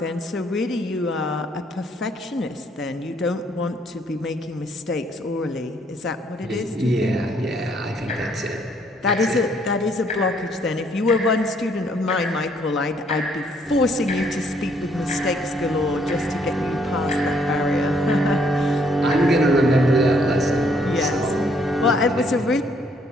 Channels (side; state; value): both; normal; correlation 0.67